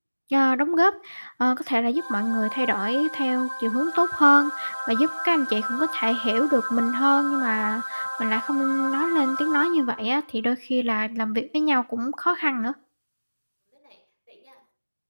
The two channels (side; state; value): both; inverted; correlation -1.00